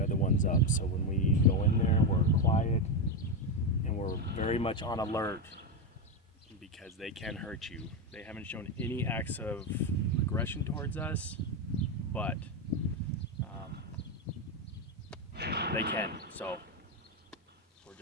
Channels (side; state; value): both; normal; correlation 0.09